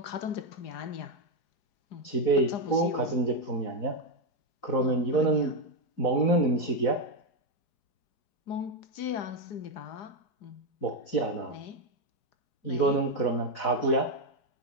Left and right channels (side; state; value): right; late; 4.7 ms